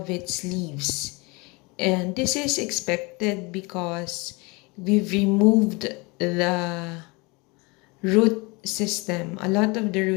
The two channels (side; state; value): right; quieter; 26.9 dB